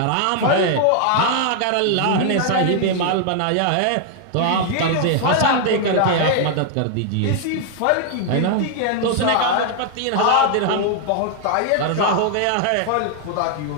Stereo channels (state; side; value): different; both; correlation 0.00